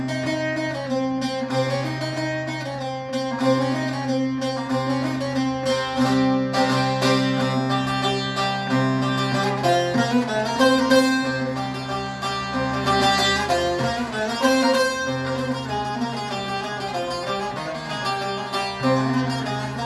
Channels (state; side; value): identical; both; correlation 1.00